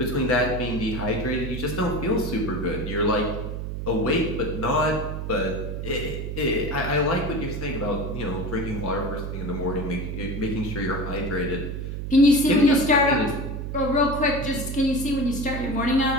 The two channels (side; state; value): right; noise; hum, 5 dB below the sound